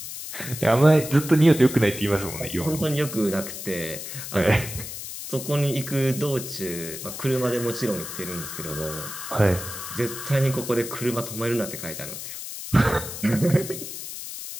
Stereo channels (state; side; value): noise; left; hiss, 9 dB below the sound